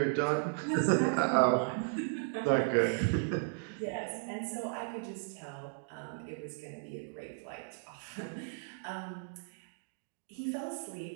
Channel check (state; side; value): silent; left; digital silence